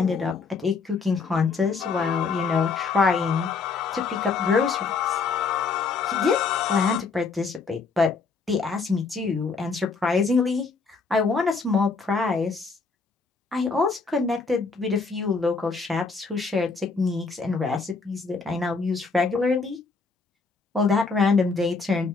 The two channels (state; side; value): quieter; right; 4.5 dB